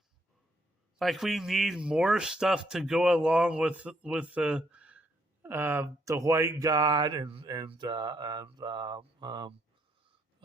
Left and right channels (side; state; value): both; normal; correlation 0.72